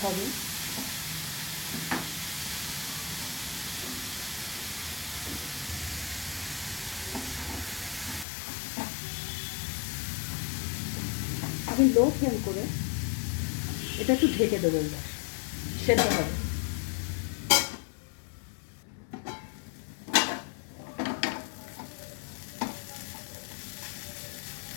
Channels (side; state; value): right; drops out; at 8.2 s